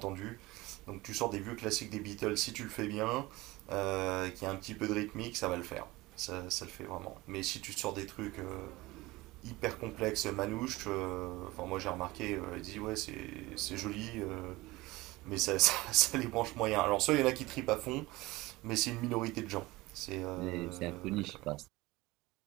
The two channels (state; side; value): quieter; left; 20.4 dB